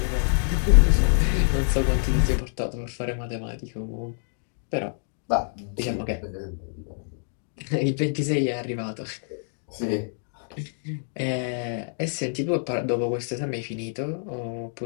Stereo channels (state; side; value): silent; right; 61 dB below the other